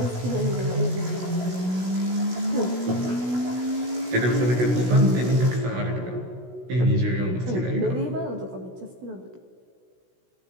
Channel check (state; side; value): late; left; 16 ms